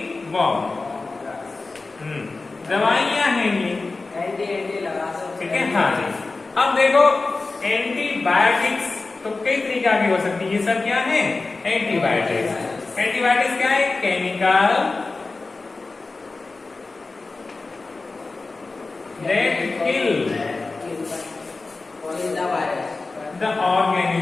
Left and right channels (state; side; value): quieter; right; 3.6 dB